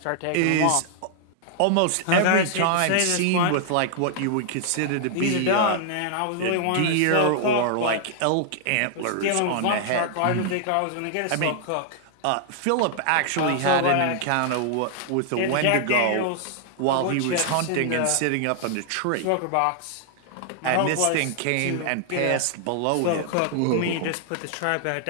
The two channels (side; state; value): both; different; correlation 0.00